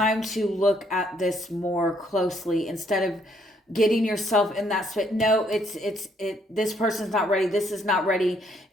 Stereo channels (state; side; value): normal; both; correlation 0.69